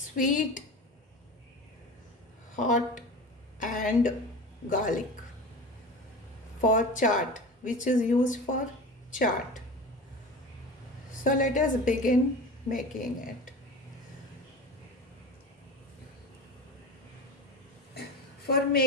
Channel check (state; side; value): normal; both; correlation 0.32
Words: hot and garlic for chaat, which is used for chaat. So let us begin making it. For